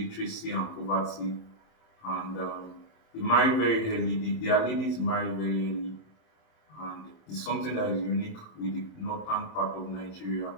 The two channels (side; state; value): right; late; 27 ms